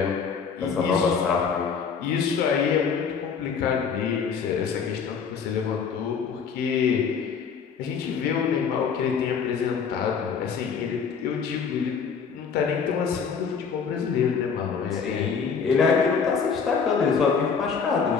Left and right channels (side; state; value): right; quieter; 6.1 dB